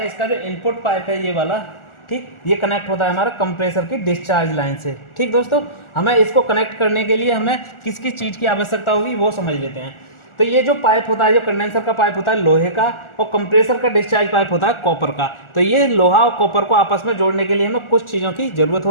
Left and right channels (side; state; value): right; late; 1.4 ms